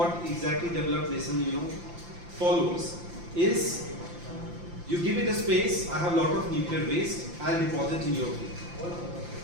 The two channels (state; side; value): late; left; 5.8 ms